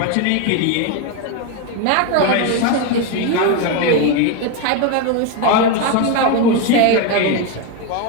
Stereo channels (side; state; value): both; different; correlation 0.02